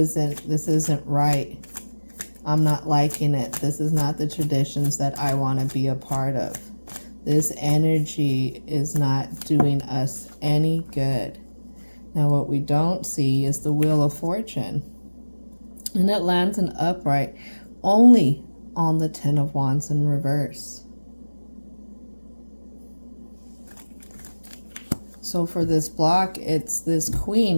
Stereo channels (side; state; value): both; inverted; correlation -1.00